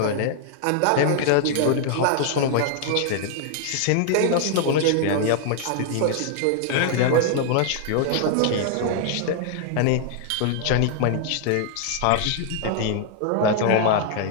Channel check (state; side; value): different; both; correlation -0.01